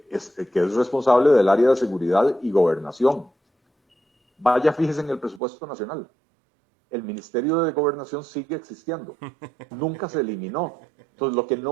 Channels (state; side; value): drops out; left; at 5.4 s